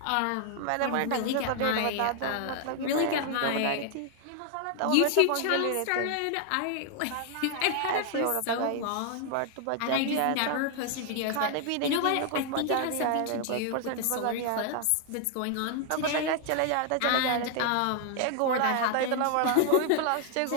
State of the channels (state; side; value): different; both; correlation 0.00